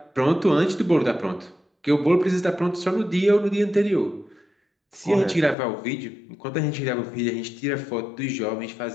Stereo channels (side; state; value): right; drops out; at 5.6 s